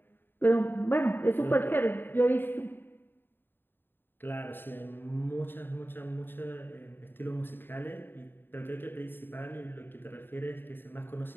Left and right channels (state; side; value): late; right; 0.097 ms